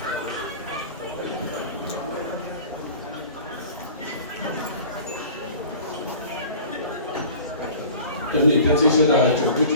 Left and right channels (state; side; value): inverted; both; correlation -0.42